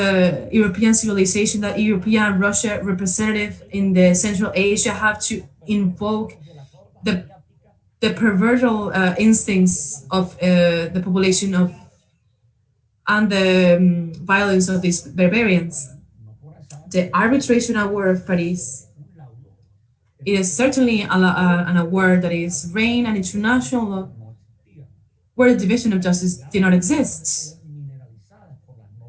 European civilization that European and Russia representative in the Central Asia have to invoke the perverted instincts of the population of and the violence of these barbarians. The arbitration award of Paris, it is certainly an award that is reigned an international law where the division of justice did not exist.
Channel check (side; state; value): both; identical; correlation 1.00